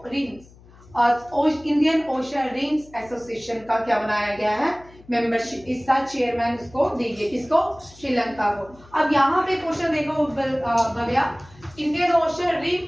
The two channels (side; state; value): left; noise; hum, 24 dB below the sound